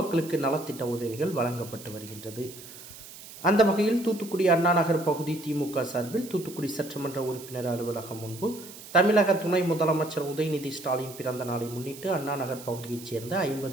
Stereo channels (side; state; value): right; noise; hiss, 16 dB below the sound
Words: நலத்திட்ட உதவிகள் வழங்கப்பட்டு வருகின்றது. அந்த வகையில் தூத்துக்குடி அண்ணாநகர் பகுதி திமுக சார்பில் தூத்துக்குடி சட்டமன்ற உறுப்பினர் அலுவலகம் முன்பு தமிழக துணை முதலமைச்சர் உதயநிதி ஸ்டாலின் பிறந்த நாளை முன்னிட்டு அண்ணாநகர் பகுதியைச் சேர்ந்த